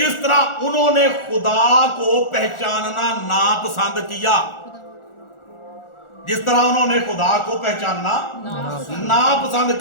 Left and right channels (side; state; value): right; late; 1.4 ms